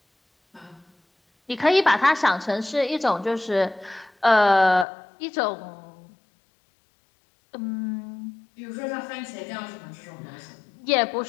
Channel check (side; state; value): right; drops out; at 4.9 s